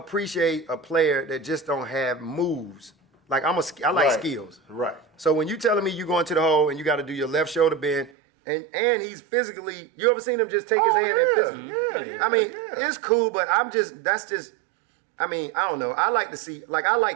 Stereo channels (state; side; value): drops out; left; at 8.1 s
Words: a player that just don't have moves. Like I like skills. Right. So when you telling me you go into the hole and you got to do your left shoulder bend, and he's physically, you ever seen him just take his hand and physically? Yeah. I mean, it's cool, but I don't know. I like to see, like I